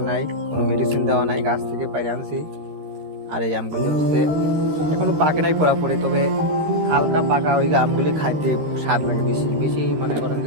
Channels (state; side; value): late; left; 13 ms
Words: নাই, কোনো মেডিসিন দেওয়া নাই, গাছ থেকে পাড়ি আনছি। আর এই আমগুলি হচ্ছে এখনো পাকে নাই পুরাপুরি, তবে হালকা পাকা ওই আমগুলি খাইতে স্বাদ লাগে বেশি বেশি। মনে করেন